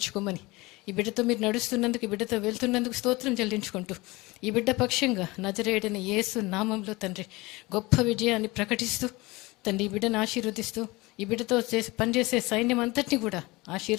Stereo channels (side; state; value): right; quieter; 22.4 dB